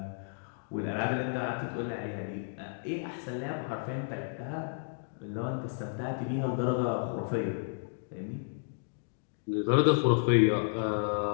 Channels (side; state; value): right; silent; digital silence